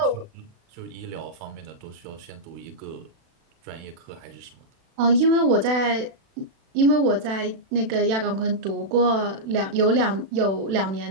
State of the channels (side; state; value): left; late; 36 ms